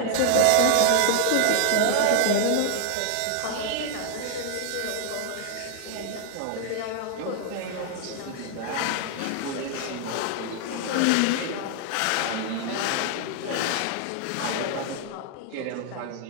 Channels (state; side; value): different; both; correlation 0.00